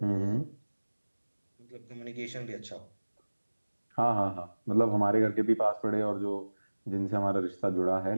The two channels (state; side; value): inverted; both; correlation -1.00